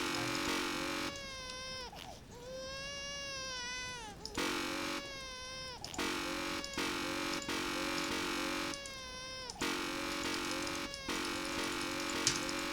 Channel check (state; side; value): identical; both; correlation 1.00